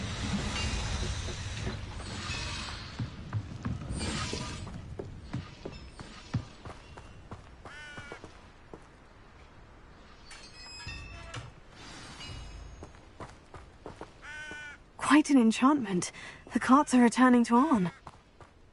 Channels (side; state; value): both; identical; correlation 1.00